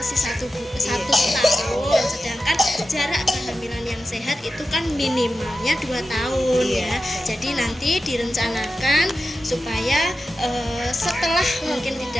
satu tahun, sedangkan jarak kehamilan yang sehat itu kan minimalnya 2 tahun ya. Jadi nanti direncanakan supaya setelah mungkin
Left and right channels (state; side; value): normal; both; correlation 0.93